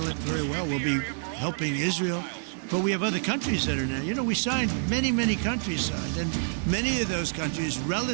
it very well. We'll be helping Israel. But we have other countries that are now. You know, we signed, many countries signed. And many of those countries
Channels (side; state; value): left; silent; digital silence